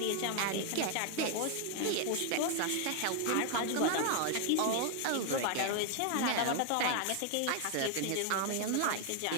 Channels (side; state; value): both; different; correlation 0.00